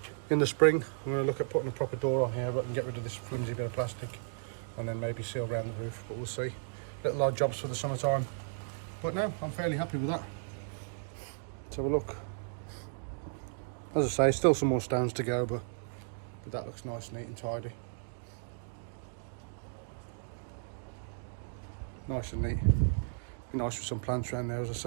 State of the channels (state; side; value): silent; left; digital silence